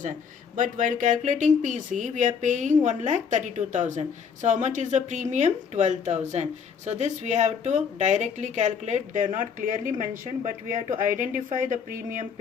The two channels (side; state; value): right; quieter; 6.5 dB